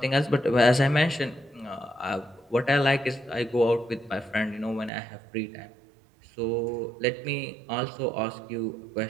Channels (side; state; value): left; drops out; at 4.9 s